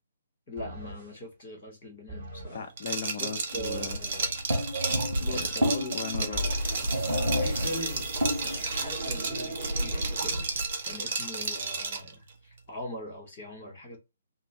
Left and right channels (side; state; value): both; inverted; correlation -0.72